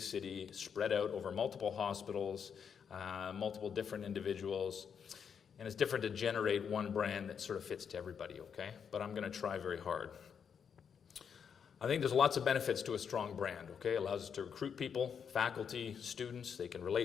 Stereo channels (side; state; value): right; quieter; 7.1 dB